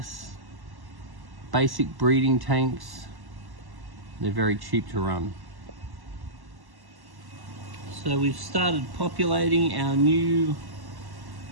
basic breeding tanks. They're very cheap to run. So we've started populating our newly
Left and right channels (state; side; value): late; left; 1.1 ms